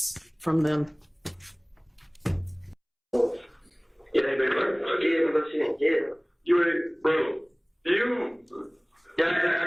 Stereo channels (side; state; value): both; identical; correlation 1.00